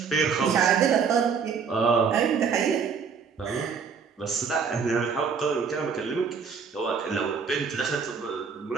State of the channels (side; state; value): left; quieter; 6.0 dB